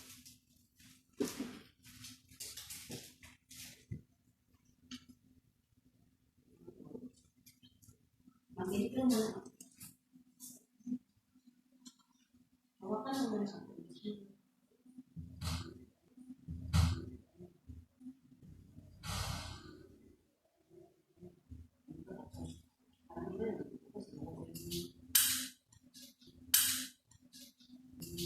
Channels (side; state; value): both; identical; correlation 1.00